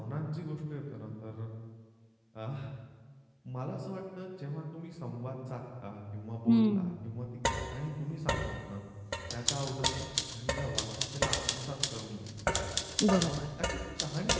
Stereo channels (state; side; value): identical; both; correlation 1.00